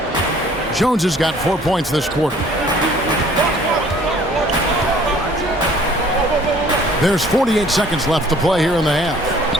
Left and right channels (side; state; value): both; normal; correlation 0.55